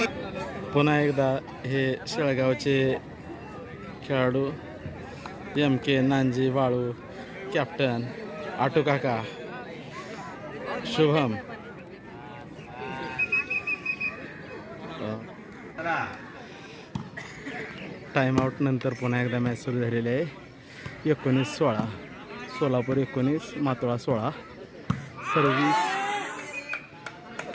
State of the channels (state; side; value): identical; both; correlation 1.00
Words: पुन्हा एकदा हे शेळगावचे खेळाडू MK नांजी वाळू, कॅप्टन आटू काका, शुभम. टाइमआउट नंतर पुन्हा एकदा मॅच सुरू झालेली आहे. 19-16. सोलापूर 19, मातोळा 16. सर्व्हिस